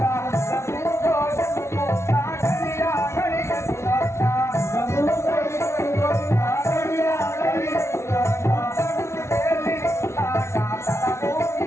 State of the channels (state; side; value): late; right; 0.13 ms